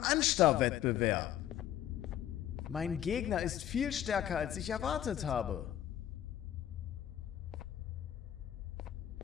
Mein Gegner ist viel stärker, als ich erwartet habe.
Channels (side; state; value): right; quieter; 11.4 dB